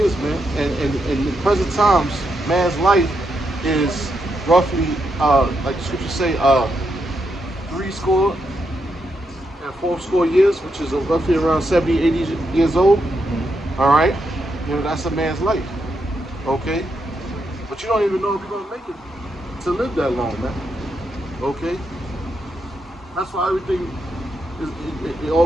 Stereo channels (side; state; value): both; normal; correlation 0.82